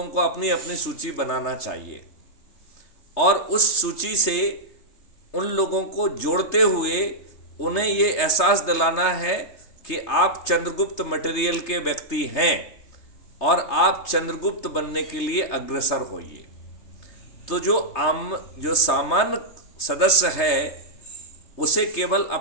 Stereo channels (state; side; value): late; right; 3.3 ms